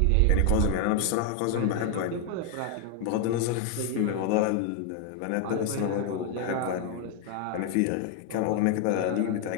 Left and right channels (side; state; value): both; different; correlation 0.01